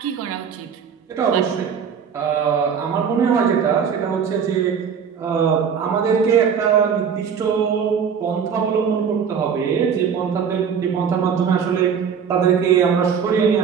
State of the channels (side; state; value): left; quieter; 7.0 dB